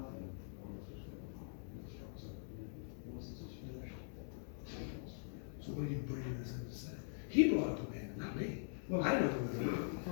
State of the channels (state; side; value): silent; right; digital silence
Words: on this was going on. Once this is finished. So what are you bringing this in to say? He brought up the man, not me. Well, I didn't open the door.